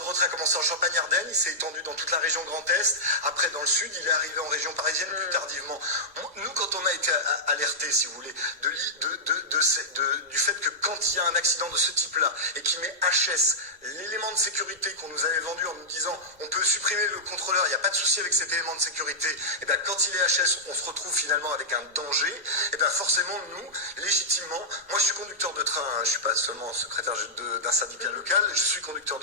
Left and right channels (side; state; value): both; normal; correlation -0.10